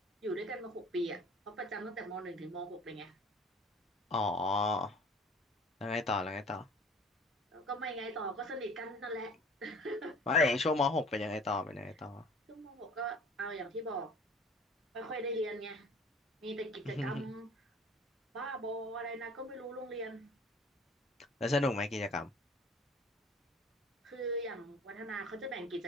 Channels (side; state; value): both; normal; correlation 0.47